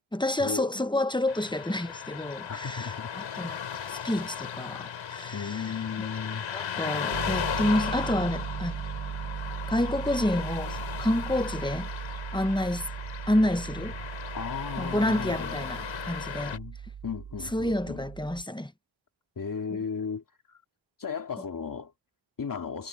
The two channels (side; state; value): both; normal; correlation 0.64